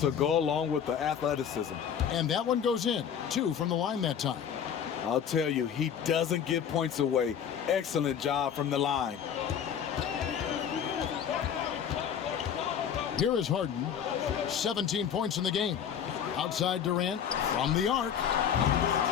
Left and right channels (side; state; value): right; quieter; 8.3 dB